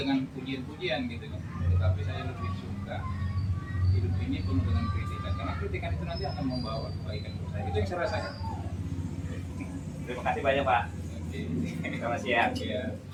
pujian-pujian, gitu kan. Tetapi saya lebih suka hidup ini penuh dengan kritikan, karena kritikan itu nanti akan membawa kebaikan buat saya. Itu yang saya rasakan. Terima kasih banyak Pak. Oke. Selamat siang. Ya.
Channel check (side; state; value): both; identical; correlation 1.00